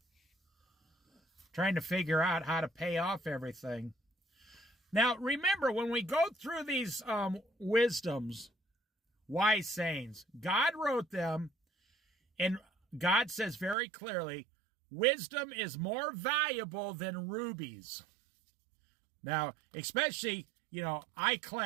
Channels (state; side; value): drops out; left; at 13.8 s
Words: trying to figure out how to pay off everything. Now, remember, when we go through these wisdoms, wise sayings, God wrote them, and God says very clearly, wisdom is more valuable than rubies. Now, especially, I